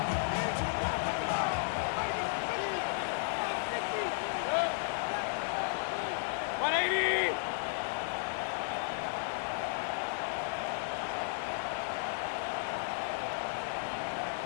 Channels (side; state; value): right; silent; digital silence